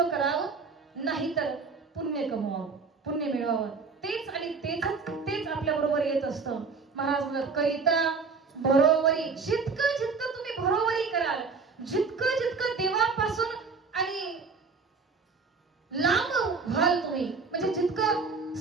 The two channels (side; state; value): left; quieter; 4.8 dB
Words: करावं, नाहीतर पुण्य कमवावं, पुण्य मिळवावं. तेच आणि तेच आपल्या बरोबर येत असतं. महाराज म्हणतात करिता बरोबरी, जितकं जितकं तुम्ही बरोबरी कराल, जितकं जितकं देवापासून आणि लांब व्हाल तुम्ही, म्हणजे जितकं